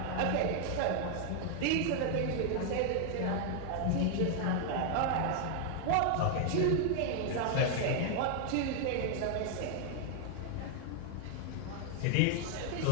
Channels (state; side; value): different; both; correlation 0.00